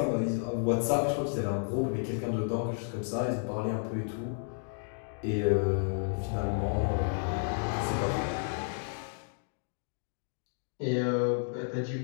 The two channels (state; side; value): silent; right; digital silence